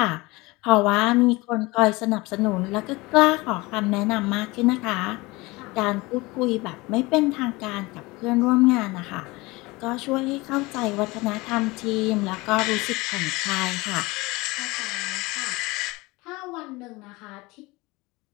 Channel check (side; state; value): right; quieter; 22.9 dB